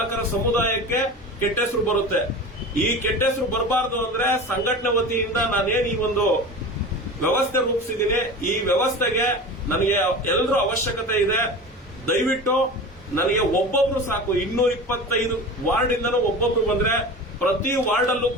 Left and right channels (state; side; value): normal; both; correlation 0.32